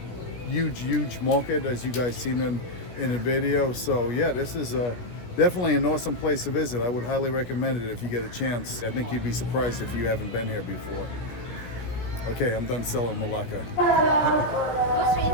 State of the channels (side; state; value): right; late; 16 ms